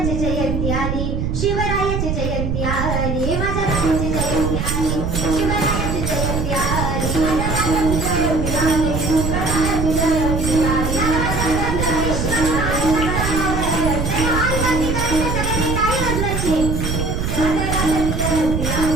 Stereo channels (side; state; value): right; noise; rumble, 1 dB below the sound